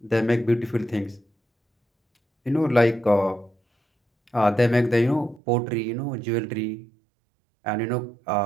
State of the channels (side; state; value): left; drops out; at 5.4 s